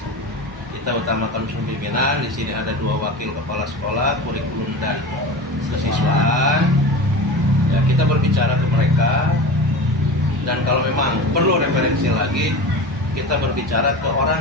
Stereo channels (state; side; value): normal; both; correlation 0.30